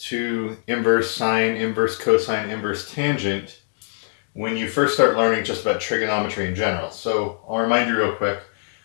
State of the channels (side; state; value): right; silent; 59 dB below the other